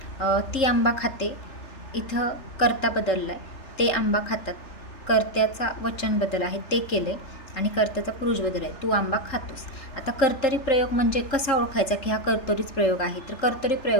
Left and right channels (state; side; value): late; right; 3.4 ms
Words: ती आंबा खाते. इथं कर्ता बदलला आहे, ते आंबा खातात. कर्त्याचा वचन बदल आहे, ते केले. आणि कर्त्याचा पुरुष बदल आहे, तू आंबा खातोस. आता कर्तरी प्रयोग म्हणजे कसा ओळखायचा की हा कर्तरीच प्रयोग आहे. तर कर्तरी